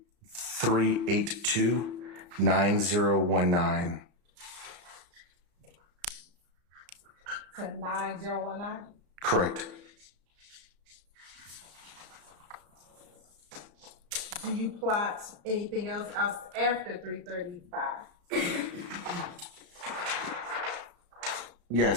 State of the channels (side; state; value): left; late; 34 ms